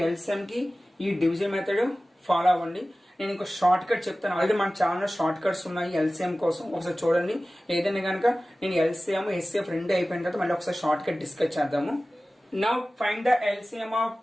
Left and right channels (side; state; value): both; normal; correlation 0.97